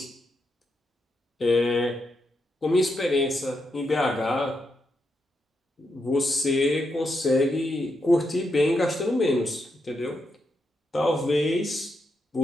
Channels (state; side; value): normal; both; correlation 0.83